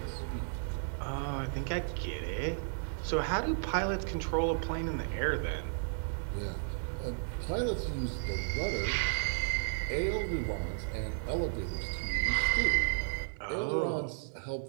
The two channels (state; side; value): silent; left; digital silence